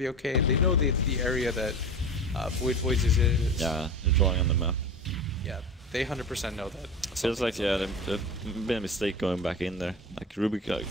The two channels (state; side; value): normal; both; correlation 0.30